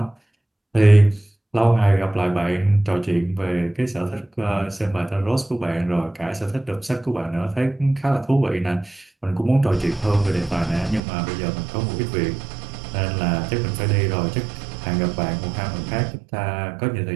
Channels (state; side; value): drops out; left; at 11.0 s